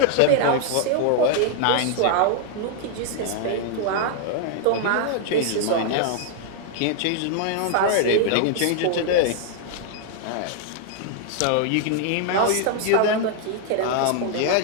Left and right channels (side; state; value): both; different; correlation 0.00